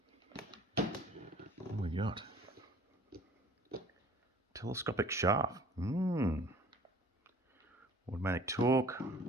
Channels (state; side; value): normal; both; correlation 0.50